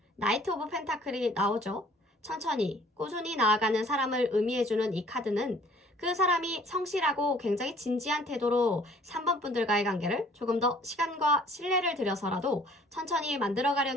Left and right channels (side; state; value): both; normal; correlation 0.56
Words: 나이트 오브 펜타클이 나오죠. 천천히 꾸준히 나아가는 사람을 의미해주는 이 카드는 그 사람이 성실하고 굉장히 진지한 태도로 3번 분들과의 관계를 조금 더 시간과 신뢰를 들여서라도 천천히